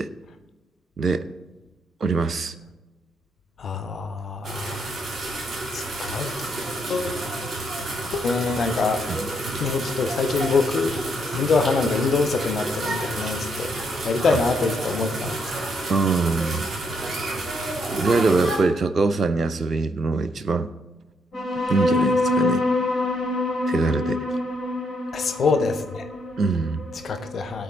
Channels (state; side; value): normal; both; correlation 0.75